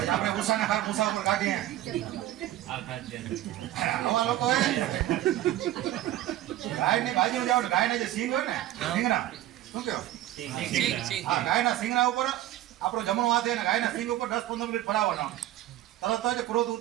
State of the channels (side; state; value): left; quieter; 14.0 dB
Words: આપણે ઉષાના હાર ઉષા ઉપર કાઢીએ. આવા લોકો ગાયની બાજુ જાવ ને ગાયના જે સિંગ હોય ને સિંગના શું કહો? હા ગાયના સિંગના ઉપર આપણો જમણો હાથ ને ગાયના સિંગ ઉપર 10-15 મિનિટ ફરાવવાનો. તરત જ ક્રોધ